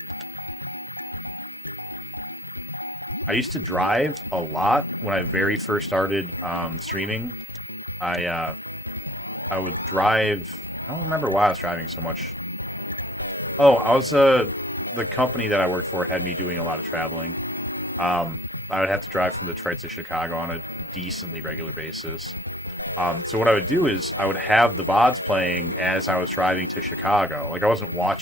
I used to drive a lot when I very first started streaming. I would drive. I don't remember why I was driving so much. Oh, I was the company that I worked for had me doing a lot of traveling. I would have to drive from Detroit to Chicago on a decently regular basis. So what I would do is I would have the VODs playing as I was driving to Chicago. Like I wasn't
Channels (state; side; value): normal; both; correlation 0.55